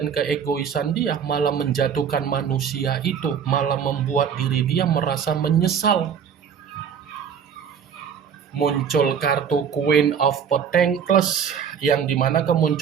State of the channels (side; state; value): left; quieter; 7.5 dB